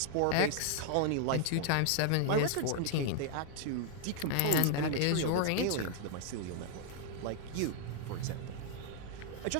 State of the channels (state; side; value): different; both; correlation 0.00